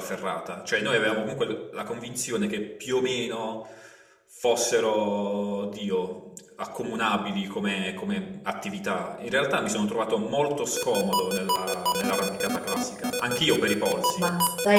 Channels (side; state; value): both; identical; correlation 1.00